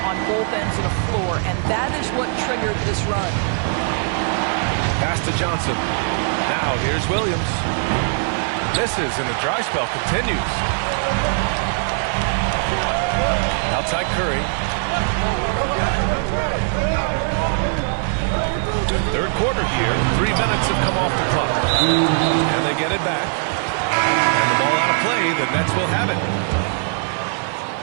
on both ends of the floor, and that is what triggered this run. Pass to Johnson. Now here's Williams. Misses, and the dry spell continues. Outside Curry. Third quarter here. 3 minutes have come off the clock. And they get it back. And the ball out of play. The Nets will have it.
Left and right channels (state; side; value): silent; left; 60 dB below the other